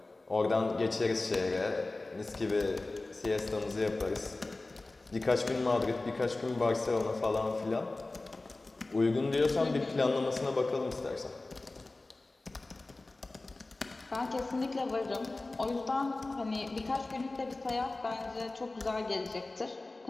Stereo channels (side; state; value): right; quieter; 3.1 dB